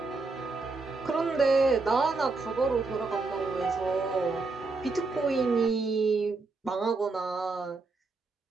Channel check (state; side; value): quieter; left; 3.8 dB